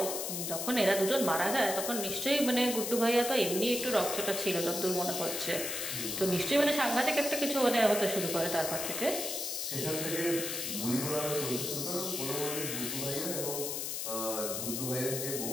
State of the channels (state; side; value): noise; left; hiss, 3 dB below the sound